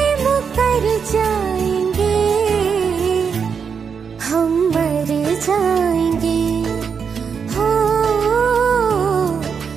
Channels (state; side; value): quieter; left; 6.4 dB